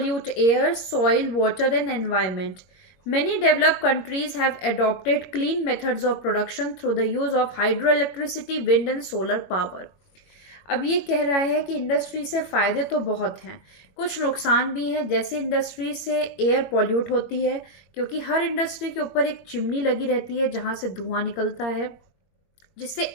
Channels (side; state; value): right; late; 21 ms